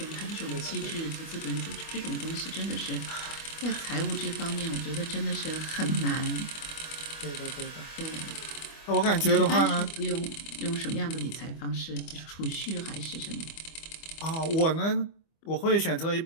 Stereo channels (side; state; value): right; late; 25 ms